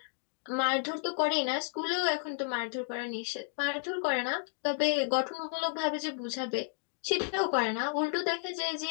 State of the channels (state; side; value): silent; right; digital silence